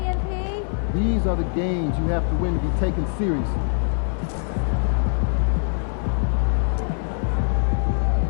MP. These are the games you have to win to be taken seriously.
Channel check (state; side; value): silent; right; 58 dB below the other